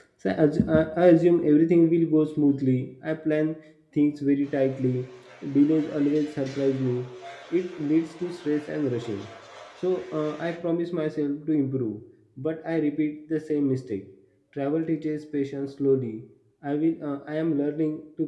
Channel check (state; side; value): identical; both; correlation 1.00